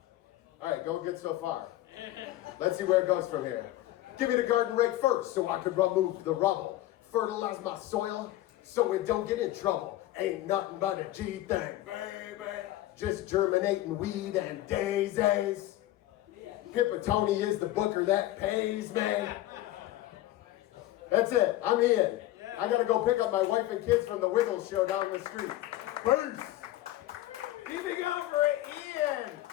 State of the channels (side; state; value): right; quieter; 15.3 dB